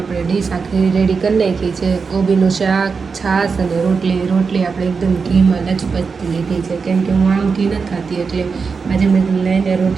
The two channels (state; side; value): quieter; left; 5.1 dB